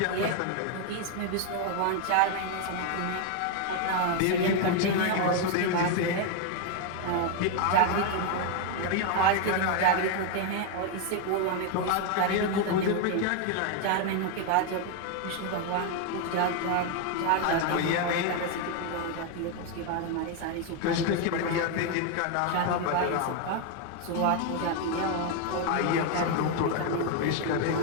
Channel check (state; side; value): different; both; correlation 0.01